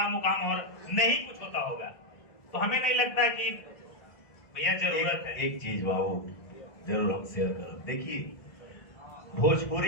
मुकाम और नहीं कुछ होता होगा, तो हमें नहीं लगता कि भैया जरूरत है। एक चीज बाबू जरूर हम शेयर करें। देखिए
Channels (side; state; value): right; late; 1.6 ms